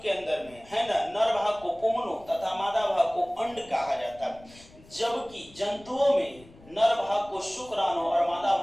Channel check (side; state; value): left; noise; rumble, 23 dB below the sound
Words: के अंदर में है ना, नर भाग को पुंगनों तथा मादा भाग को अंड कहा जाता है, जबकि जंतुओं में नर भाग को शुक्राणु और मादा